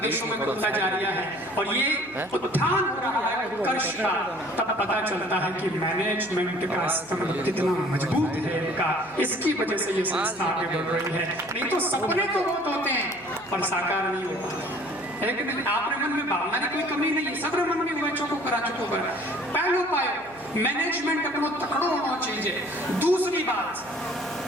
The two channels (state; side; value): noise; right; hum, 26 dB below the sound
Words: में खुलता जा रहा है। और ये उत्थान हो रहा है उत्कर्ष का, तब पता चलता है कि मैनेजमेंट का स्तंभ कितना मजबूत है इनका, इसकी वजह से ये संस्था आगे बढ़ रही है। नहीं तो सपने तो बहुत होते हैं पर साकार नहीं होता है कि नहीं। आपके मन में भावना की कोई कमी नहीं है, सबरे मन में हुआ चौको करा चुको कर। पहलो पायो मैनेजमेंट अपनो तकड़ो होना चाहिए। दूसरी बात,